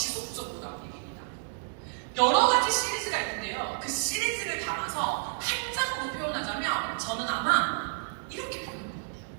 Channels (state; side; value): silent; left; digital silence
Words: 나오는 얘기입니다. 여러 가지 시리즈가 있는데요. 그 시리즈를 담아서 한 장으로 표현하자면 저는 아마 이렇게 표현합니다.